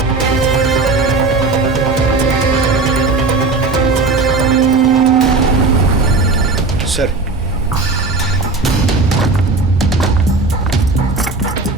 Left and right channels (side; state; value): left; quieter; 3.7 dB